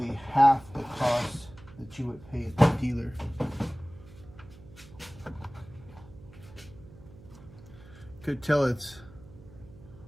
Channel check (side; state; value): right; noise; hum, 20 dB below the sound